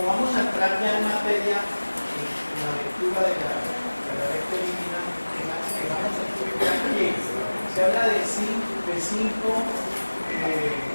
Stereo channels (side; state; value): both; inverted; correlation -1.00